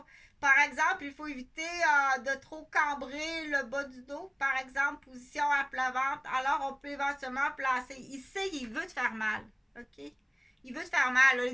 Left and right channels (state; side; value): identical; both; correlation 1.00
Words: Par exemple, il faut éviter de trop cambrer le bas du dos. Par exemple, position à plat ventre. Alors, on peut éventuellement placer. Ici, il veut te faire mal. OK? Il veut te faire mal.